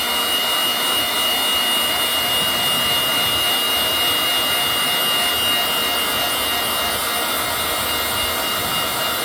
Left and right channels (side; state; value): both; identical; correlation 1.00